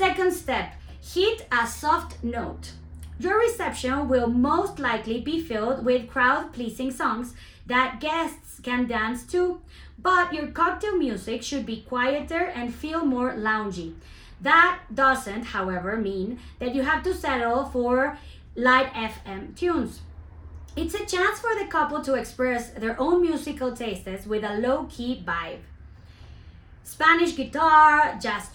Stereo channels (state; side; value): identical; both; correlation 1.00